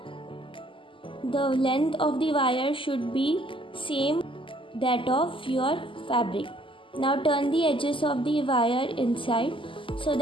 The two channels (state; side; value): late; right; 0.25 ms